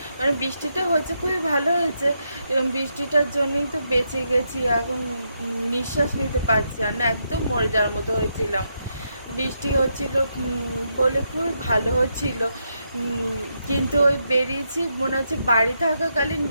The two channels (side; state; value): both; inverted; correlation -0.81